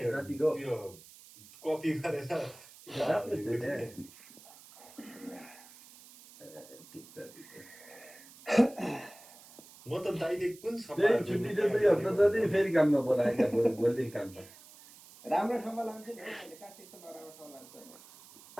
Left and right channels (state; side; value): noise; right; hiss, 21 dB below the sound